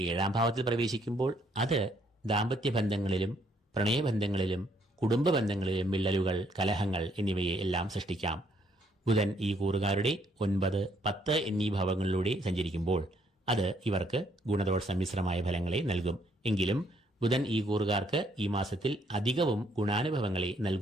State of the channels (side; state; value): both; normal; correlation 0.69